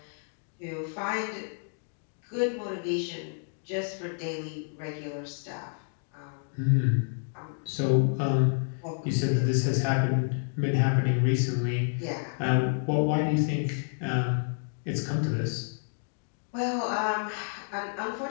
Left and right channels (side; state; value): right; silent; digital silence